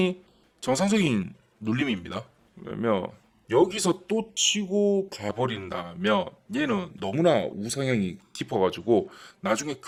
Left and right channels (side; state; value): both; identical; correlation 1.00